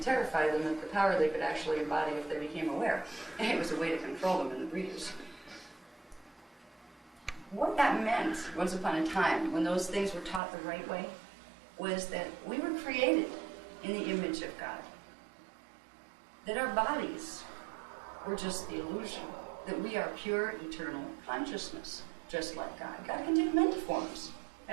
terrified them of the power they could actually embody if they became aware. And it was a way to control them in the breeders. What that meant, once upon a time, when those things were taught the right way, was that we were created in the image of God. That our bodies were just the illusion. That we are pure, eternal consciousness, just like God. God can take many forms,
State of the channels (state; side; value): drops out; left; at 10.4 s